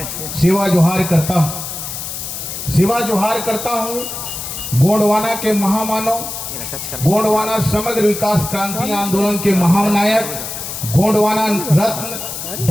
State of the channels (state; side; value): noise; left; hiss, 7 dB below the sound